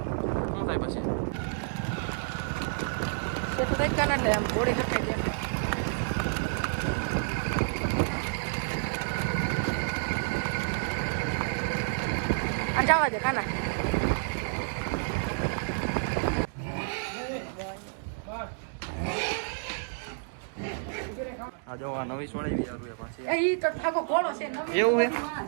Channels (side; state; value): left; silent; digital silence